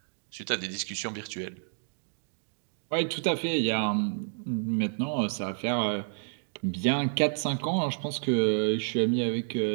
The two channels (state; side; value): silent; left; digital silence